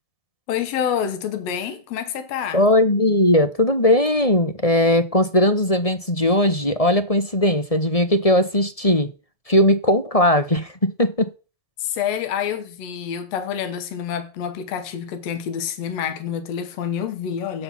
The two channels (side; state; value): right; late; 1.7 ms